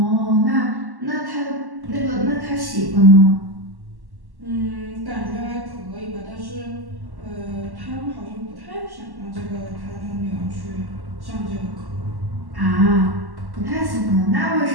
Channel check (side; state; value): left; late; 1.1 ms